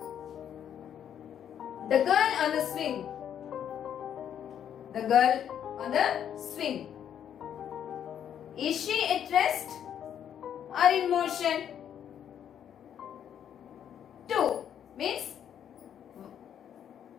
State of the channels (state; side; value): quieter; right; 9.3 dB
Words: The girl on the swing. The girl on the swing. Is she at rest or in motion? 2 means